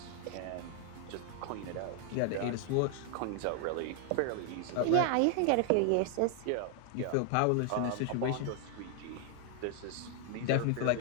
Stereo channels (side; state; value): both; different; correlation 0.00